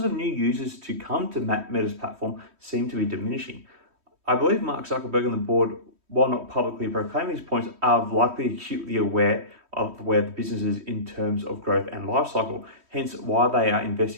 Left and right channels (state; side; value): late; left; 3.1 ms